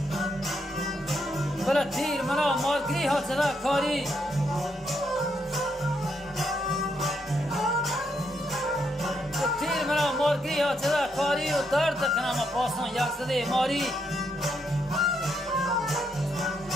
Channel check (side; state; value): both; normal; correlation 0.78